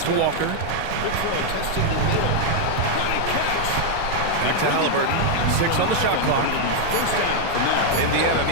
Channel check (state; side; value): different; both; correlation 0.00